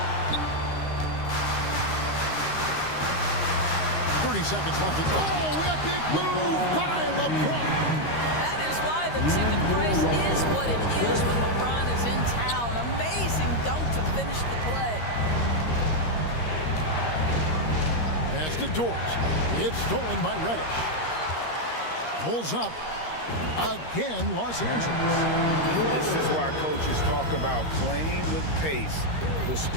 30 seconds left. Oh, epic move by LeBron. That is why the ticket price is what it is when LeBron is in town. Amazing dunk to finish the play. Pass to Dort. It's stolen by Reddish. Pulls up. Again, Los Angeles. This is why coaches talk about playing with pace. The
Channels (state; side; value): late; right; 13 ms